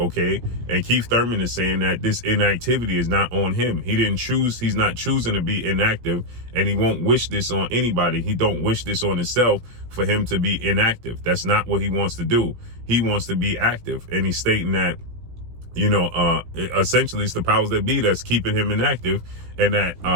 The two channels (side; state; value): left; late; 17 ms